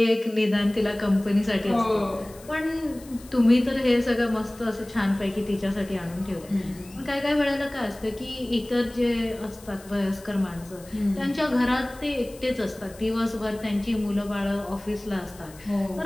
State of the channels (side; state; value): left; noise; hiss, 22 dB below the sound